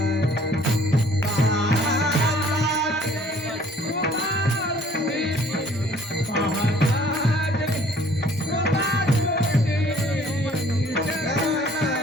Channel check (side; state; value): both; normal; correlation 0.56